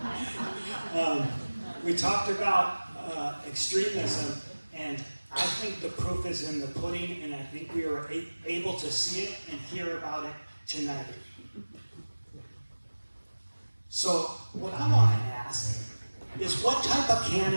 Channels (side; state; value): both; inverted; correlation -1.00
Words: We talked about extremism, and I think the proof is in the pudding, and I think we were able to see it and hear about it tonight. So what I want to ask is, what type of